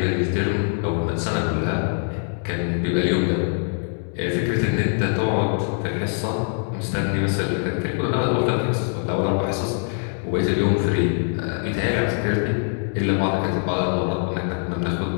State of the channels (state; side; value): silent; right; 55 dB below the other